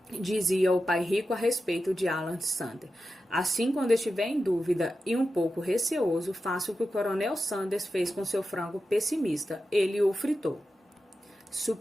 dizia o pai rico a respeito de Alan Sanders. Assim, quando estiver em dúvida e um pouco receoso, faça o que o Coronel Sanders fez com seu frango pessimista. Ele o fritou.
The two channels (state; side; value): normal; both; correlation 0.91